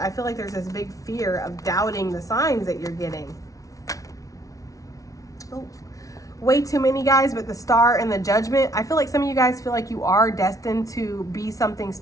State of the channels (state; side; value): late; right; 0.17 ms